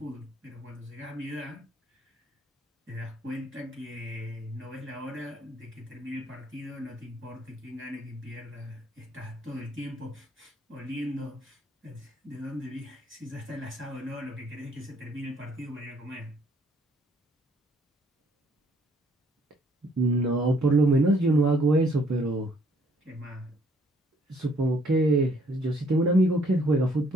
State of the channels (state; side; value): normal; both; correlation 0.64